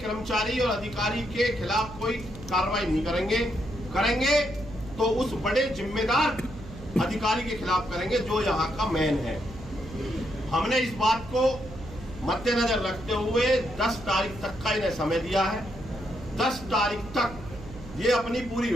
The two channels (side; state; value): right; noise; hum, 14 dB below the sound